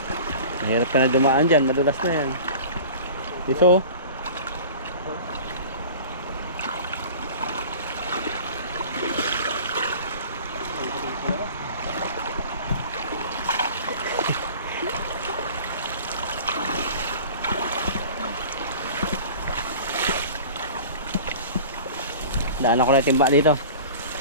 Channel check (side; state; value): both; inverted; correlation -0.40